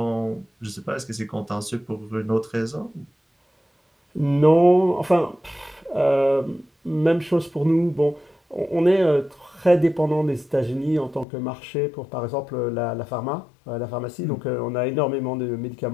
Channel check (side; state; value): right; drops out; at 11.2 s